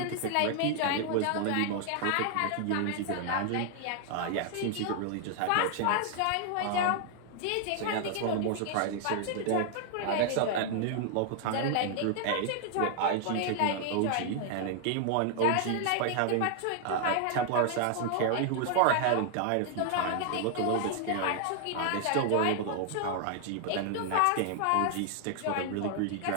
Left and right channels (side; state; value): both; different; correlation 0.00